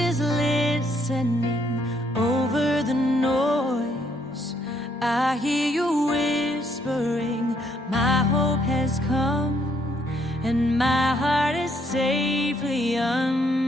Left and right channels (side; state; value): both; normal; correlation 0.70